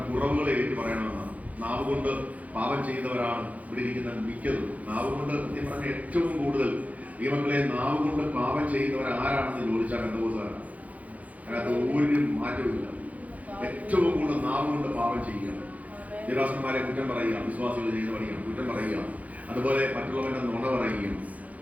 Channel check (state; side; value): late; left; 0.072 ms